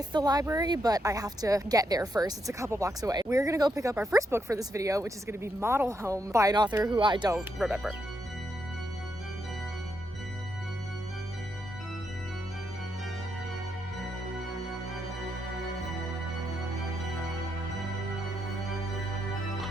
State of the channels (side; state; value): both; normal; correlation 0.80